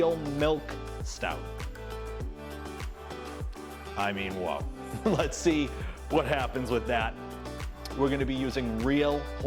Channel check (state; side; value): identical; both; correlation 1.00